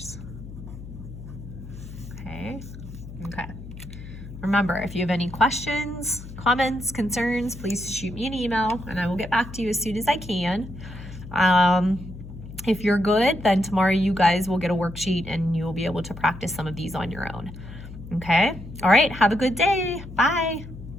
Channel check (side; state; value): left; noise; hum, 13 dB below the sound